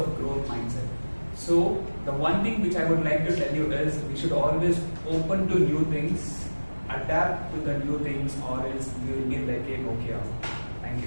growth mindset. So the one thing which I would like to tell you is we should always open to new things, adapt to the new things, or else we will be like a Nokia. Thank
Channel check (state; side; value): inverted; both; correlation -1.00